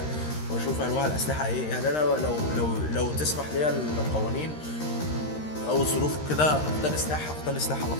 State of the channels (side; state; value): right; late; 13 ms